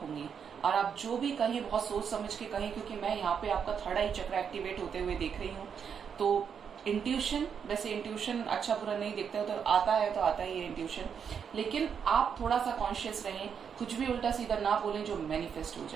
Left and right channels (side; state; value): left; quieter; 7.2 dB